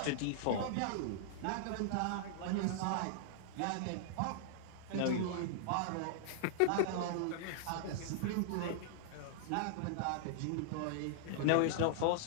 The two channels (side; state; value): both; different; correlation -0.01